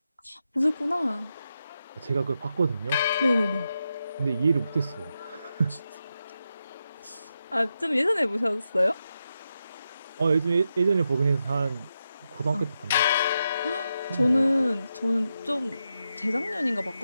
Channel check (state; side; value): inverted; both; correlation -0.87